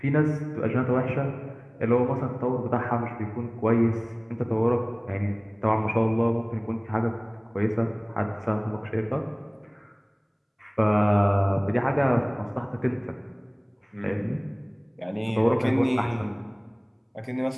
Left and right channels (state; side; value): identical; both; correlation 1.00